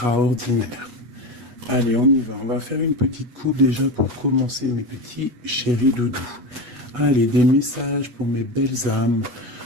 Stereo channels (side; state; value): left; late; 8.3 ms